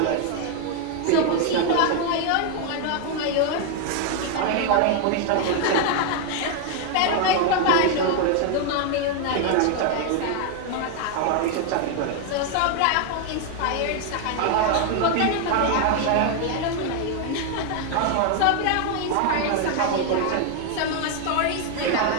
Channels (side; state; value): both; different; correlation 0.00